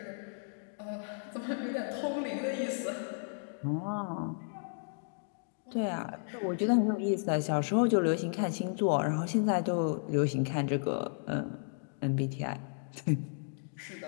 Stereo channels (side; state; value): right; silent; digital silence